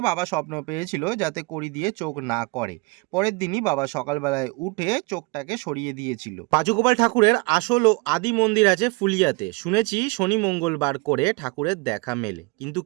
বাবা স্বপ্ন পেয়েছিল যাতে কড়ি দিয়ে চোখ না করে। পরের দিনই বাবা সকালবেলায় উঠে চোখটাকে সরিয়ে দিয়েছিল। পাঁচুগোপাল ঠাকুরের আসল ও আদি মন্দির আছে ফুলিয়াতে। শুনেছি শনি মঙ্গলবার করে ঠাকুরের দেখা মেলে, কিন্তু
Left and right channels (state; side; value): quieter; left; 27.7 dB